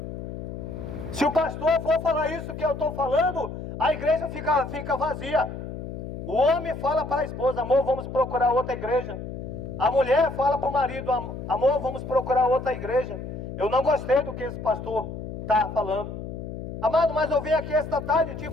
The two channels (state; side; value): noise; left; hum, 8 dB below the sound